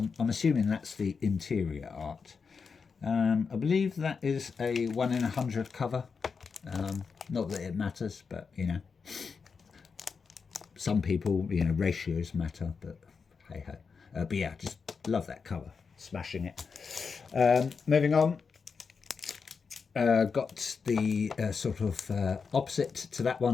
assuming that's the interior art. I believe that is a 1 in 100 cover. Not that it matters, but you know, some people, you know, ratios matter, but hey ho. But yeah, just love that cover. Smashing it. Moving on. Got the sort of opposite to that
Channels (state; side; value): quieter; right; 5.4 dB